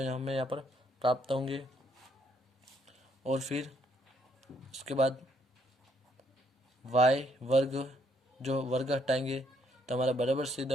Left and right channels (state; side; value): normal; both; correlation 0.70